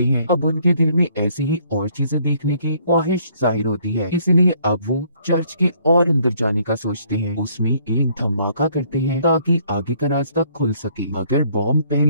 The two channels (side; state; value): both; inverted; correlation -0.63